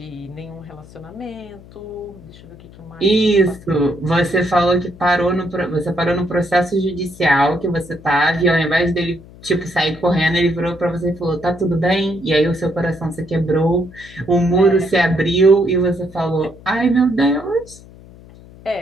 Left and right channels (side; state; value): left; noise; hum, 21 dB below the sound